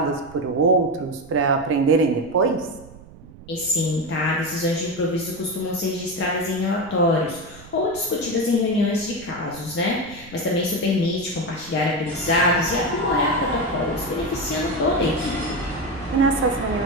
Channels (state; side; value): noise; right; rumble, 20 dB below the sound